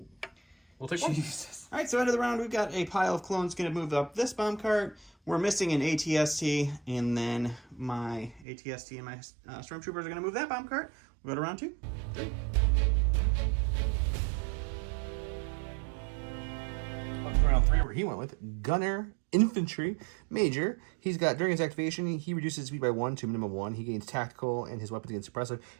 We'll take 1. Jesus. All right, so end of the round, we've got a pile of clones going to move up this bomb cart. We're missing an ATST, and then my ATST and my Stormtroopers are going to move that bomb cart. We'll go to round 2. 3. Round 3 where he went with Gunner infantry major. He's got, during his activation, he reduces speed by 1 to minimum 1. He gains tactical, and his weapons gain suppressive.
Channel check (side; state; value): left; drops out; at 8.5 s